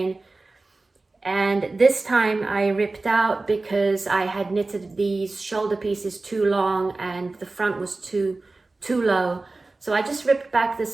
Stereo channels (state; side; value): quieter; left; 3.4 dB